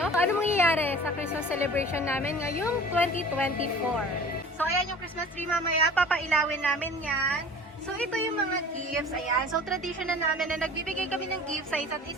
ano mangyayari sa Christmas celebration namin ngayong 2024. So ayan yung Christmas tree mamaya, papailawin namin yan. So, ito yung mga gifts. Ayan. So, tradition na namin na nagbibigay kami ng gifts sa isa't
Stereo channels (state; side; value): normal; both; correlation 0.43